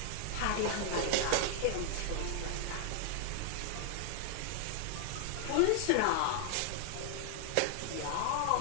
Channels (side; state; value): both; different; correlation 0.00